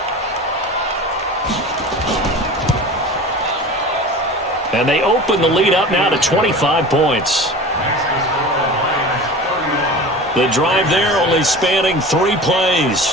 And they open the lead up now to 25 points. The drive there only spanning 3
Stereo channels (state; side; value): normal; both; correlation 0.36